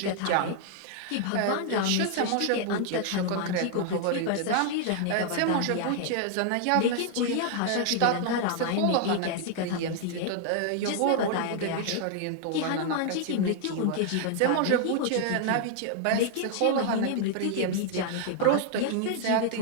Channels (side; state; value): both; different; correlation 0.00